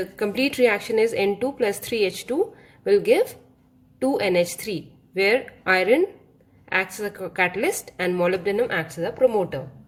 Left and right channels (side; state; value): both; identical; correlation 1.00